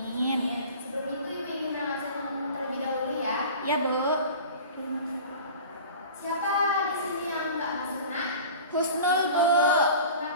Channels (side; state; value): both; inverted; correlation -0.39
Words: Sebelum itu Ibu ingin menjelaskan terlebih dahulu ya. Ya, Bu. Siapa di sini yang nggak masuk nak? Husnul, Bu.